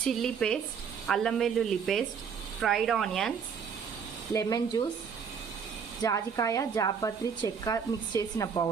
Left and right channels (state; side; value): quieter; left; 6.6 dB